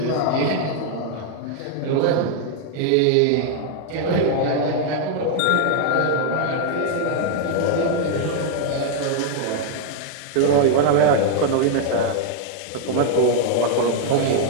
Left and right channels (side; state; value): both; different; correlation 0.00